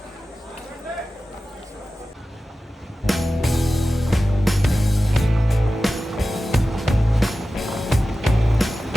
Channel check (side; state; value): both; normal; correlation 0.95